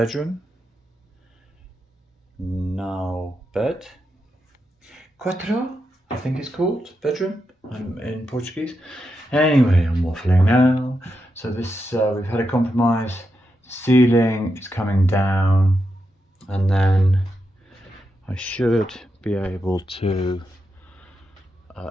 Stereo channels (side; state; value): both; normal; correlation 0.86